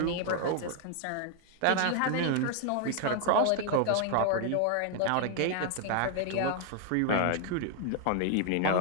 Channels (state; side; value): different; both; correlation 0.00